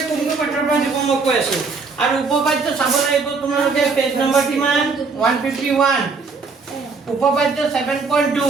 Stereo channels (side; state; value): left; quieter; 4.5 dB